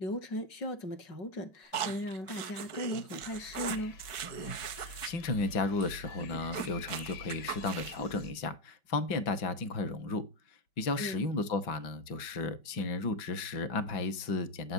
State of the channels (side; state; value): right; late; 5.2 ms